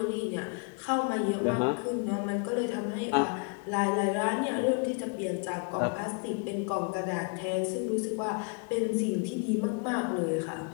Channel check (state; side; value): quieter; right; 35.3 dB